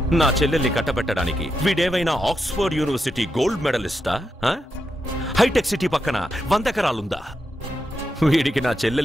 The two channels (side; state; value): both; normal; correlation 0.86